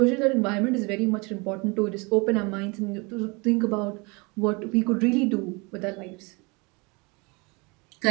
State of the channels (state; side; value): quieter; left; 28.1 dB